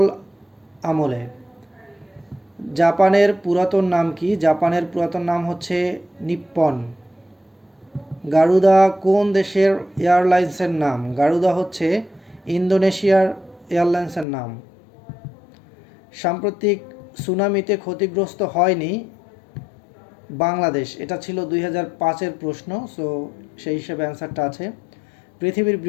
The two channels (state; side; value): drops out; right; at 14.2 s